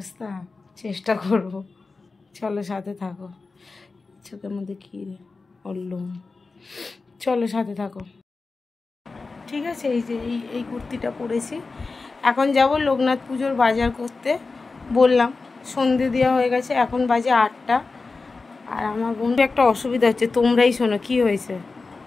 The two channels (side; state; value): right; quieter; 4.0 dB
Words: চেষ্টা করব। চলো সাথে থাকো। চোখের মধ্যে কী বললুম, চলো সাথে থাকো। ঠিক আছে, এই যে এই কুর্তিটা পরেছি। এখন যাব লোকনাথ পুজোর বাজার করতে। বললাম সন্ধে দেওয়া হয়ে গেছে, এখন বাজে 8টা। আর আমার বন্ধু একটা অসুবিধা হচ্ছে, তোমরাই শোনো। কি হয়েছে,